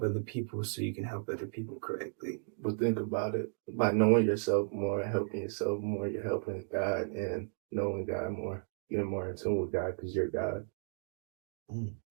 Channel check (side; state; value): left; silent; digital silence